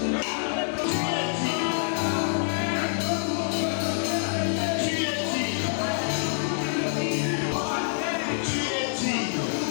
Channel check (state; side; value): silent; right; digital silence